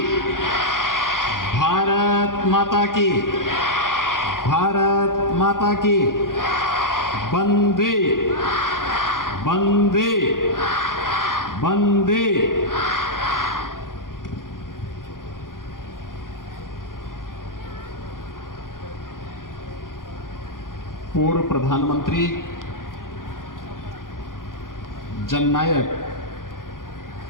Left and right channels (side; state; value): right; late; 0.90 ms